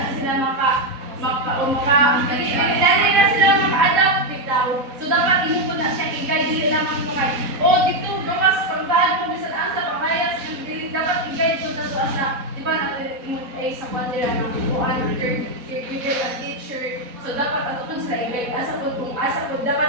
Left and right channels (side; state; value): left; late; 4.1 ms